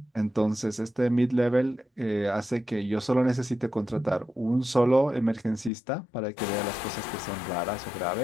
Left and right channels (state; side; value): drops out; right; at 5.7 s